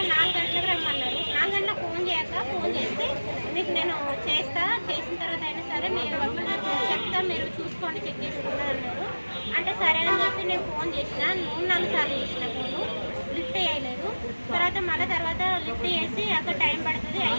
4 గంటలకు రమ్మన్నారు. 4 గంటలకు ఫోన్ చేస్తే మీకు నేను చేసిన తర్వాత అయినా సరే మీరు చెప్తా, మీరు చూసుకోండి, చెక్ చేసుకున్నారు అన్నారు. అంటే సరే అని చెప్పి నేను ఫోన్ చేసిన, 3-4 సార్లు చేసిన, ఫోను లిఫ్ట్ చేయలేదు. తర్వాత లిఫ్ట్ చేసి అక్కడ టైం పడుతుంది,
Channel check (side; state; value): both; inverted; correlation -1.00